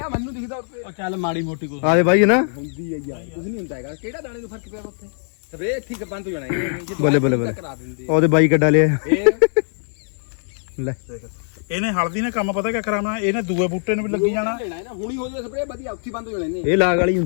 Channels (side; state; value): right; silent; 65 dB below the other